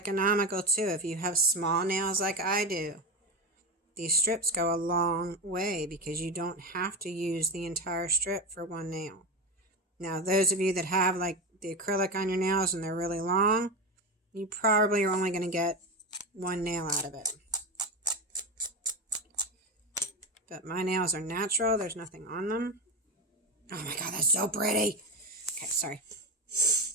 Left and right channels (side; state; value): both; normal; correlation 0.19